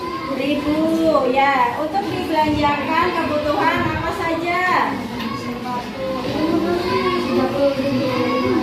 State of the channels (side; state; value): both; identical; correlation 1.00